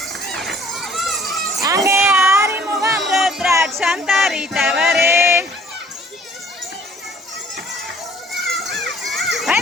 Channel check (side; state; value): both; normal; correlation 0.56